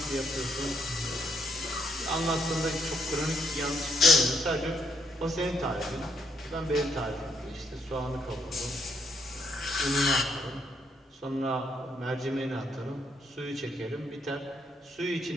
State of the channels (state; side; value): normal; both; correlation 0.73